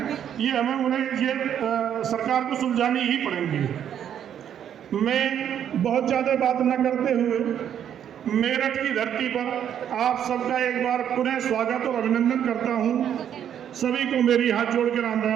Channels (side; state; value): left; quieter; 9.5 dB